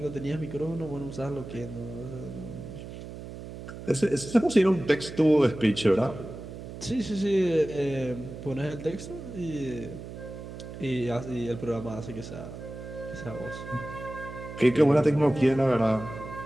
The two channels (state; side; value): noise; right; hum, 11 dB below the sound